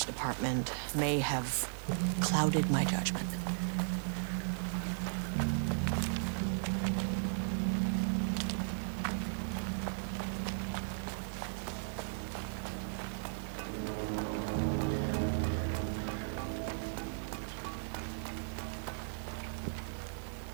department may have clouded my judgment.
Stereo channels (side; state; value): left; silent; digital silence